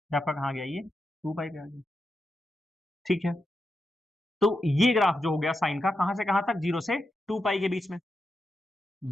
आपका कहाँ गया ये, 2 पाई पे आ गया, ठीक है। तो ये ग्राफ जो हो गया साइन का, कहां से कहां तक, 0 से 2 पाई के बीच में।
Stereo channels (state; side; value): normal; both; correlation 0.87